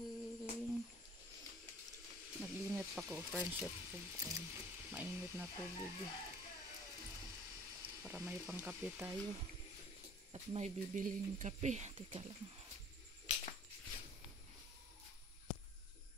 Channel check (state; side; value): normal; both; correlation 0.50